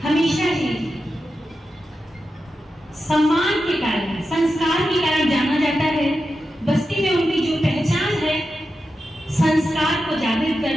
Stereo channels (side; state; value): both; normal; correlation 0.90